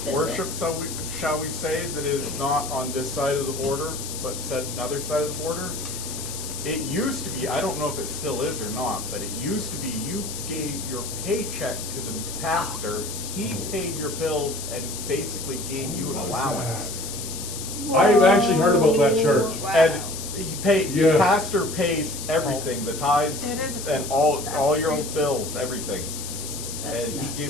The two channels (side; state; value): left; noise; hiss, 8 dB below the sound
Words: worship, shall we say, that is not on this side of the border, but set another side of the border. it used to be, I don't know if it still is or not, but it used to be you gave your paycheck to the pastor, he paid your bills and basically gave you an allowance. I've actually heard about that church. And the Yeah. pastor pays everything, the tithes It is a- and all that's your crazy. bills, everything. That's And he nuts.